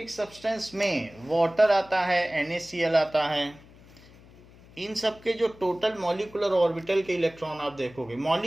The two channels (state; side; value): noise; left; hum, 23 dB below the sound